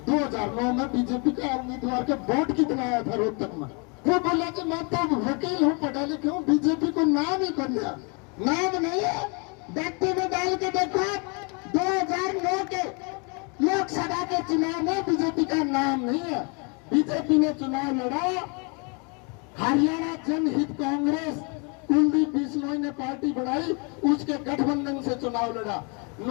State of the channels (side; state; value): right; quieter; 33.8 dB